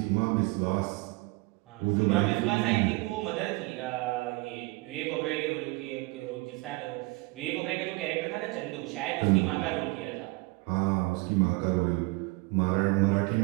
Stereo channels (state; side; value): quieter; left; 23.9 dB